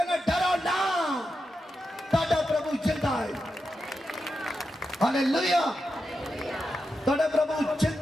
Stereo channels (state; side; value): normal; both; correlation 0.88